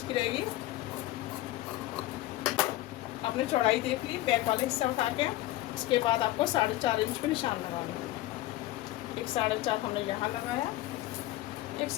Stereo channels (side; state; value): right; quieter; 16.3 dB